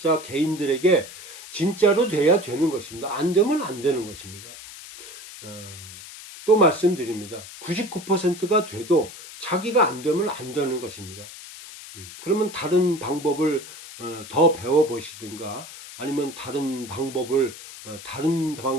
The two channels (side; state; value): left; noise; hiss, 15 dB below the sound